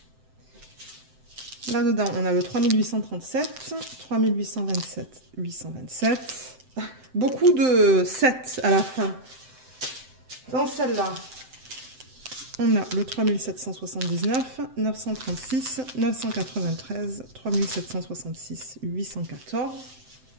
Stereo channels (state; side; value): late; left; 7.8 ms